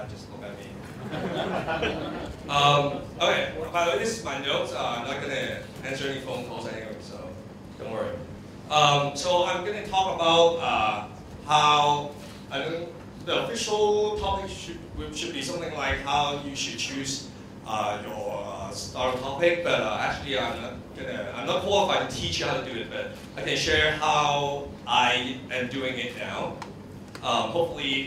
just look at me. Okay, by the way, this is my notes. I'm not going to answer any phone calls anyway, so don't worry. So I'm going to talk about how the official topic should be something like how you should choose your starter topic, but actually I'm not qualified to teach you how to do it, but I can share how I am doing it now.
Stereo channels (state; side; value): identical; both; correlation 1.00